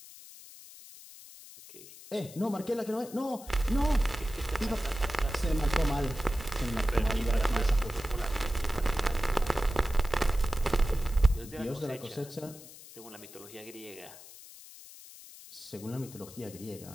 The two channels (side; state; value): left; noise; hiss, 17 dB below the sound